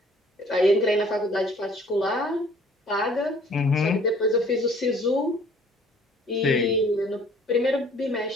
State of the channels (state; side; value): normal; both; correlation 0.55